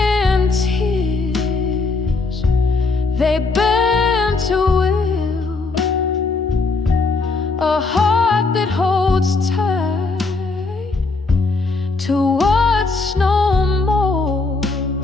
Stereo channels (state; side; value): quieter; right; 3.8 dB